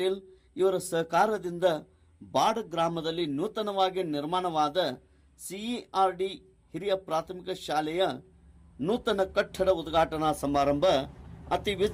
ಇವರ ಸಹಕಾರದಿಂದ ಬಾಡ್ ಗ್ರಾಮದಲ್ಲಿ ನೂತನವಾಗಿ ನಿರ್ಮಾಣವಾದ ಸಿಇಆರ್ಡಿ ಹಿರಿಯ ಪ್ರಾಥಮಿಕ ಶಾಲೆಯ ನೂತನ ಕಟ್ಟಡ ಉದ್ಘಾಟನಾ ಸಮಾರಂಭ ಅತಿ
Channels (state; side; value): identical; both; correlation 1.00